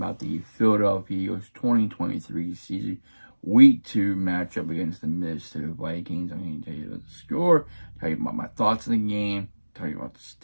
the Philadelphia Eagles 2023 season week 2 matchup against the Minnesota Vikings. I'm going to tell you about the score, tell you about my thoughts on the game, tell you about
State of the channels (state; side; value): inverted; both; correlation -1.00